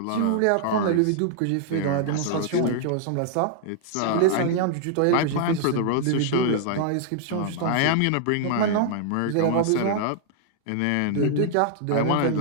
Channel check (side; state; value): both; different; correlation -0.01